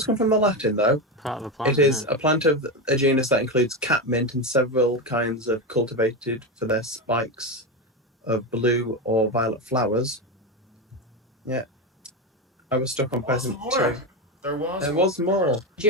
come from the Latin, though. Part of a plant. It is a plant of a genus that includes catmint and several kinds of cultivated for their spikes of blue or violet flowers. Yeah. I was stuck on peasant too. There was more. Did you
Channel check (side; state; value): both; normal; correlation 0.15